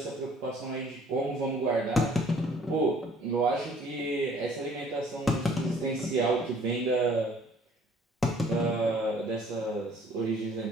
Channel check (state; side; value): normal; both; correlation 0.56